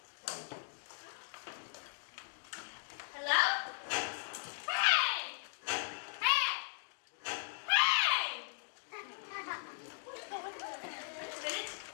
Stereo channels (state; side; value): silent; right; digital silence